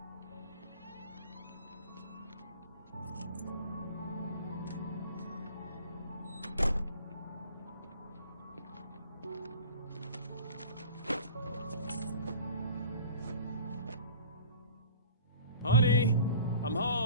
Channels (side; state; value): both; inverted; correlation -0.44